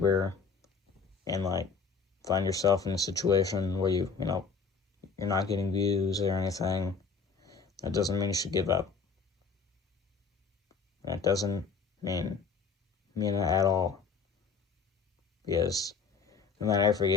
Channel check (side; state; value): right; quieter; 5.1 dB